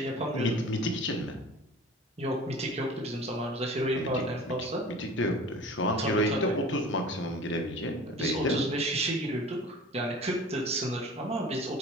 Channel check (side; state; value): both; normal; correlation 0.41